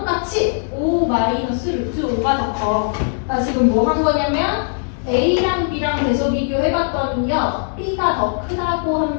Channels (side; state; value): right; silent; digital silence